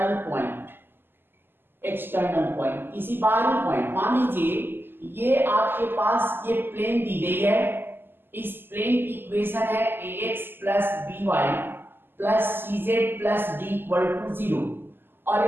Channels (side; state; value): left; late; 0.099 ms